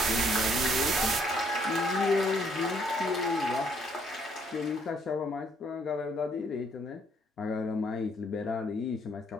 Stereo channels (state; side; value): normal; both; correlation 0.67